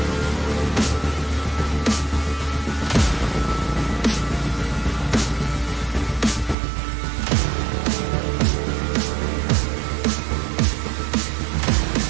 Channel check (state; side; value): drops out; left; at 6.6 s